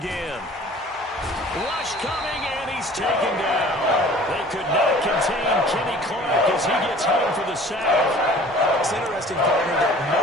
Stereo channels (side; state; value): both; normal; correlation 0.48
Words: Rush coming, and he's taken down. They could not contain Kenny Clark as he gets home for the sack. It's interesting, partner, that